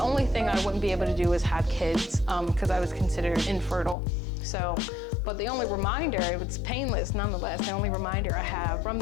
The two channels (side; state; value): right; drops out; at 4.0 s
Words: only thing I wouldn't be able to do is have kids because I was considered infertile. So, but the only reminder, it's painless nonetheless, the only reminder I have from